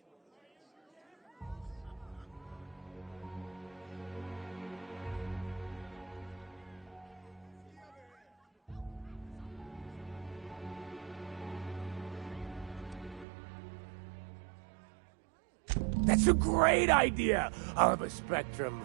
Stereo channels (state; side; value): drops out; left; at 13.2 s